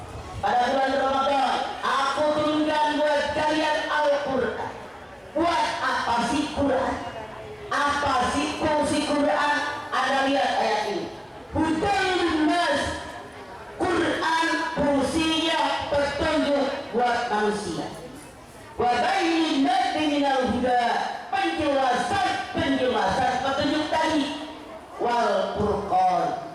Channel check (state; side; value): identical; both; correlation 1.00